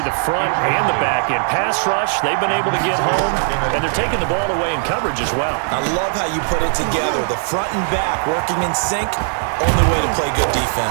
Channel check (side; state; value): left; silent; 59 dB below the other